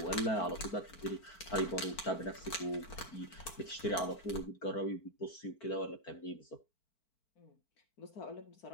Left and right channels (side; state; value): right; late; 4.5 ms